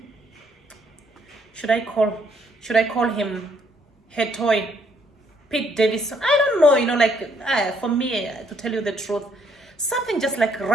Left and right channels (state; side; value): normal; both; correlation 0.69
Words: should I call, should I call him her toy, Pete Davidson? I don't know, for me, to tell you the truth, something just like